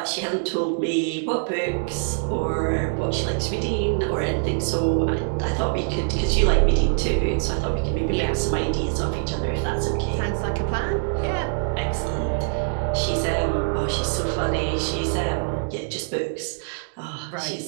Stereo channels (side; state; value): left; silent; digital silence